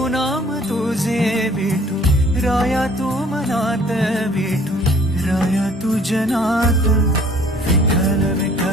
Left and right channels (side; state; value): both; normal; correlation 0.55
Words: नाम तुझे विठू राया तू मनात विठू राया तू जनात विठ्ठल